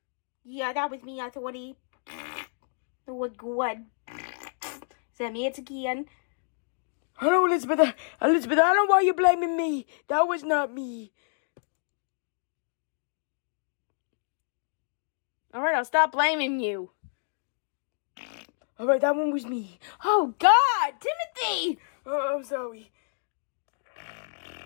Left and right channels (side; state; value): right; silent; digital silence